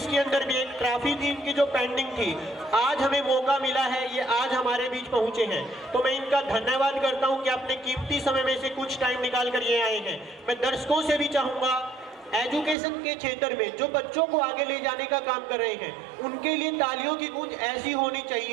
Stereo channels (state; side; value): drops out; left; at 12.8 s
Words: के अंदर भी एक ट्रॉफी थी इनकी जो पेंडिंग थी, आज हमें मौका मिला है, ये आज हमारे बीच पहुंचे हैं, तो मैं इनका धन्यवाद करता हूं कि अपने कीमती समय में से कुछ टाइम निकाल कर ये आए हैं। मैं दर्शकों से भी चाहूंगा एजुकेशन के क्षेत्र में जो बच्चों को आगे ले जाने का काम कर रहे हैं, उनके लिए तालियों की गूंज ऐसी होनी